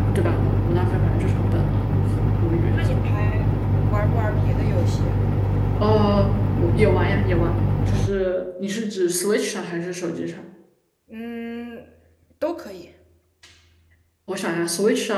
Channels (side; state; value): both; identical; correlation 1.00